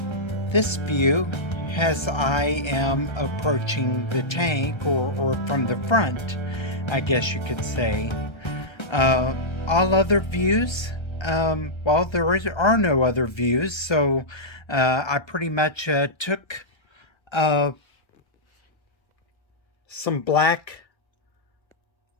this view as I am approaching the tank, or from the front, I guess you could say. All other views, well, there are no other views, so I pretty much took some black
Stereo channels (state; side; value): late; right; 1.3 ms